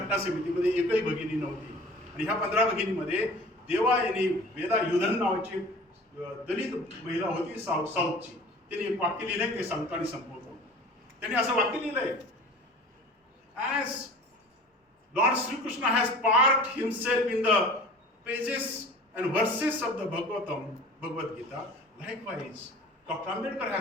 समितीमध्ये एकही भगिनी नव्हती. आणि ह्या 15 भगिनीमध्ये देवायनी वेदा युधन नावाची दलित महिला होती साऊथची. त्यांनी एक वाक्य लिहिलंय, ते सांगतो आणि संपवतो. त्यांनी असं वाक्य लिहिलंय, as lord Shrikrishna has parked himself in the pages and verses of the Bhagavad Gita, likewise Dr. Ambedkar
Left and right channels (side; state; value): both; normal; correlation 0.43